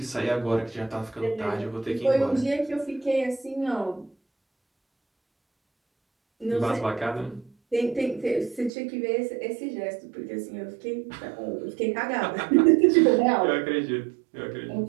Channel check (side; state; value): left; drops out; at 8.7 s